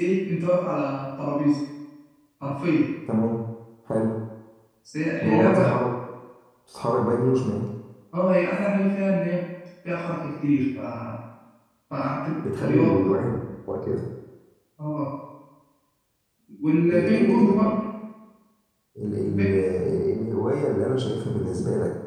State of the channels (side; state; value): both; identical; correlation 1.00